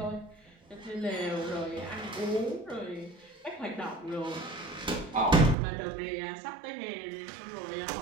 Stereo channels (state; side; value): drops out; left; at 5.6 s